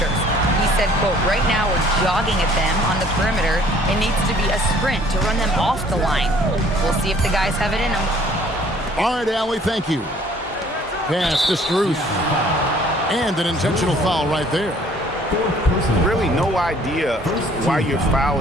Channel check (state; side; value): normal; both; correlation 0.57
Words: He said, quote, right now we're jogging at them on the perimeter. It needs to be a sprint to run them off the line. We'll see if the guys have it in them. All right, Allie, thank you. Pass to Strus. And an intentional foul right there. Really no idea why you're